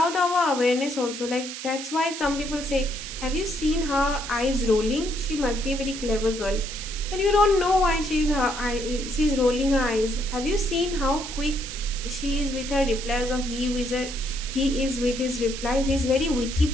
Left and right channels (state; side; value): noise; right; hiss, 9 dB below the sound